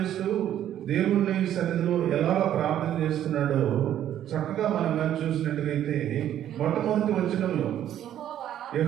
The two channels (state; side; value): quieter; left; 11.2 dB